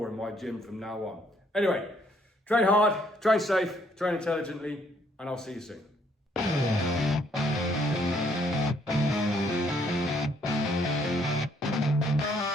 in my gym from now on. Anyway, train hard, train safe, train intelligently, and I'll see you soon.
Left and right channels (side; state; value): both; normal; correlation 0.67